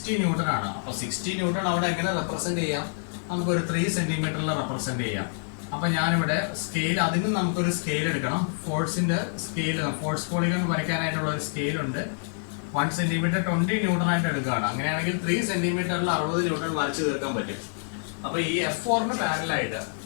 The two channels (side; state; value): right; silent; 60 dB below the other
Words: ന്യൂട്ടൺ ആണ്. അപ്പൊ 60 ന്യൂട്ടൺ അവിടെ എങ്ങനെ റെപ്രസെന്റ് ചെയ്യാം? നമുക്കൊരു 3 സെന്റിമീറ്ററിൽ റെപ്രസെന്റ് ചെയ്യാം. അപ്പൊ ഞാനിവിടെ സ്കെയിൽ, അതിന് നമുക്കൊരു സ്കെയിൽ എടുക്കണം. ഫോഴ്സിന്റെ സ്കെയിൽ, ഫോഴ്സ് പോളിഗൺ വരയ്ക്കാനായിട്ടുള്ള ഒരു സ്കെയിൽ ഉണ്ട്. 1 സെന്റിമീറ്റർ 20 ന്യൂട്ടൺ ആയിട്ട് എടുക്കുകയാണ്. അങ്ങനെയാണെങ്കിൽ 3 സെന്റിമീറ്ററിൽ 60 ന്യൂട്ടൺ വരച്ചു തീർക്കാൻ പറ്റും. അപ്പൊ ഈ F4ന് പാരലായിട്ട്,